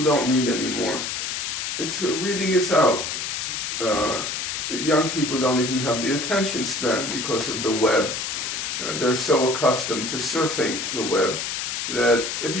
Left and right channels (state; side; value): noise; left; hiss, 3 dB below the sound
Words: don't read anymore. Reading is out. Young people don't even have the attention span because of the web. They're so accustomed to surfing the web that if